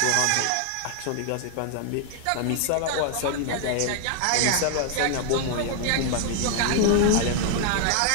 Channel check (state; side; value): different; both; correlation 0.00